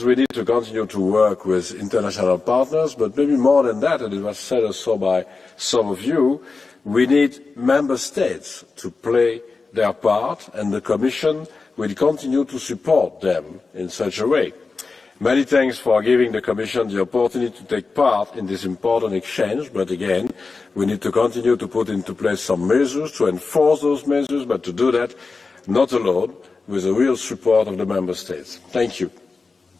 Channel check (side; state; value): right; quieter; 4.2 dB